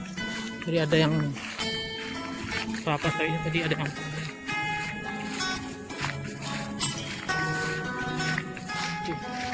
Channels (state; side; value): identical; both; correlation 1.00